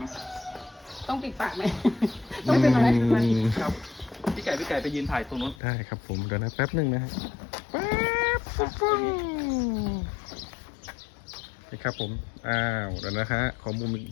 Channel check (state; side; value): drops out; right; at 5.6 s